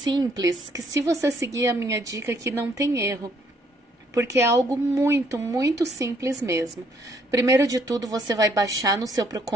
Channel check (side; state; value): both; normal; correlation 0.68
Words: que se você seguir a minha dica aqui, não tem erro. Porque é algo muito, muito simples mesmo. Primeiro de tudo, você vai baixar no seu